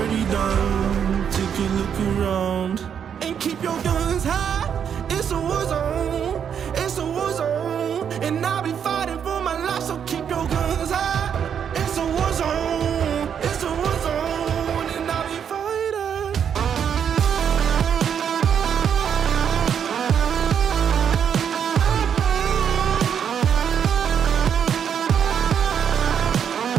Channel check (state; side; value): quieter; left; 8.0 dB